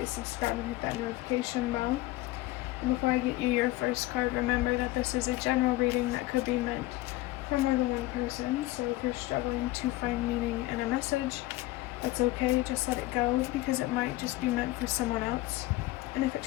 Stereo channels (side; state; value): right; quieter; 17.9 dB